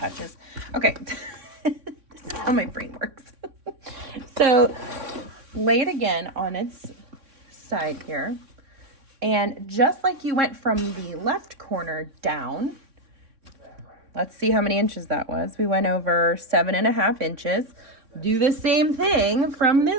Okay, this is how my brain works. So lay it again on its side here. And just like you went from the left corner down, let's see how many inches that was. We went over 7.5 inches. Do the same thing from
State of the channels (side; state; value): left; late; 3.6 ms